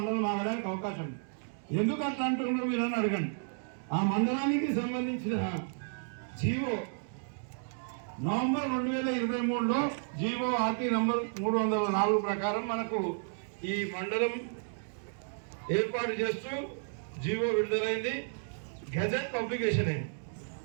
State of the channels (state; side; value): silent; left; digital silence